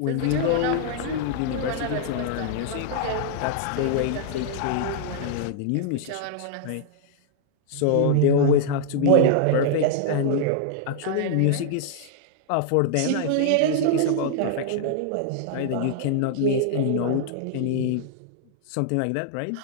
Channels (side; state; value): both; different; correlation -0.01